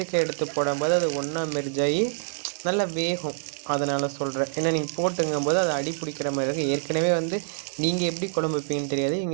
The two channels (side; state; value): left; silent; 56 dB below the other